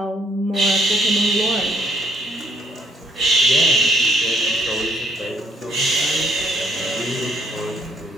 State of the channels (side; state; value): both; normal; correlation 0.66